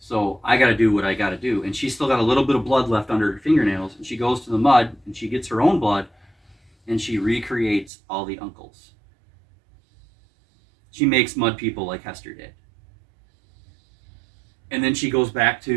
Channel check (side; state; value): left; drops out; at 7.9 s